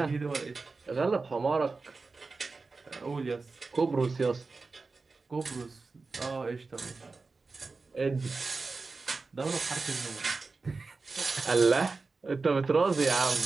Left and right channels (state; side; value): quieter; left; 4.0 dB